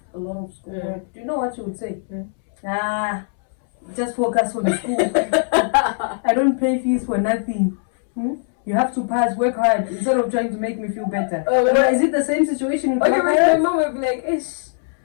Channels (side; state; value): right; silent; 65 dB below the other